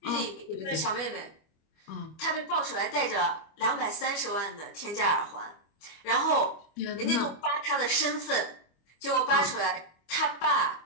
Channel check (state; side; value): late; right; 25 ms